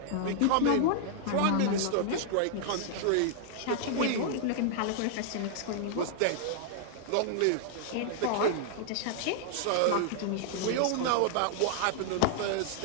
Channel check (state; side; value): different; both; correlation -0.01